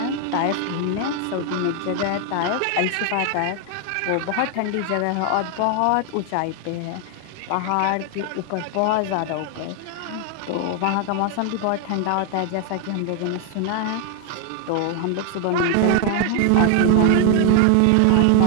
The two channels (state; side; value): different; both; correlation 0.00